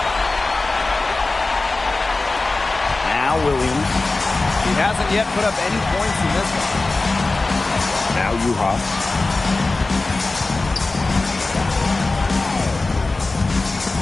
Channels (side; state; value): right; quieter; 3.4 dB